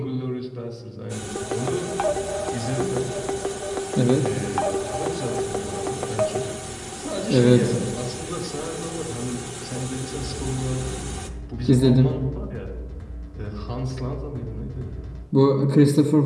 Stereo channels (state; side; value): identical; both; correlation 1.00